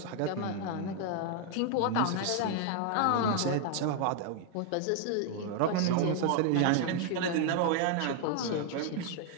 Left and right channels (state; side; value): different; both; correlation 0.00